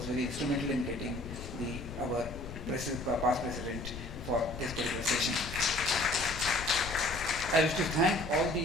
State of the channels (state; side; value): noise; left; rumble, 11 dB below the sound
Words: very instrumental in getting our past president for this particular session. I wish to thank all